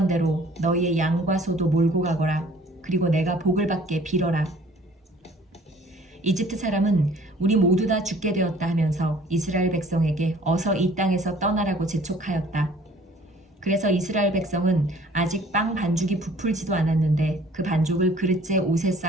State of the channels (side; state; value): both; normal; correlation 0.54